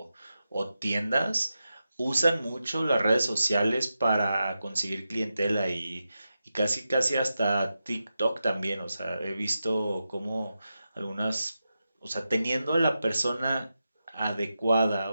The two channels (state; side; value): inverted; both; correlation -0.90